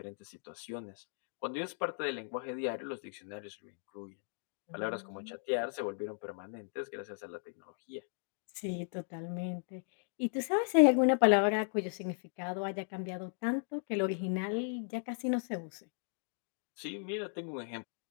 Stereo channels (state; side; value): silent; right; 53 dB below the other